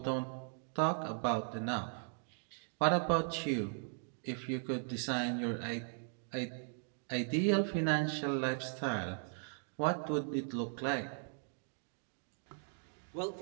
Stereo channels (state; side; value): silent; left; 52 dB below the other